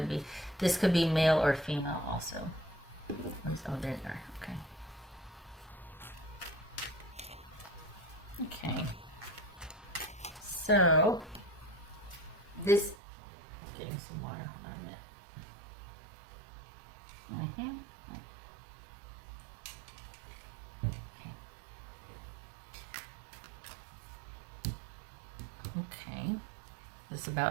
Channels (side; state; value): left; drops out; at 13.0 s